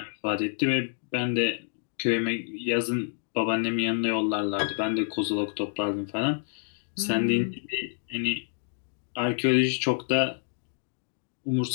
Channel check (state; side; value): silent; right; 59 dB below the other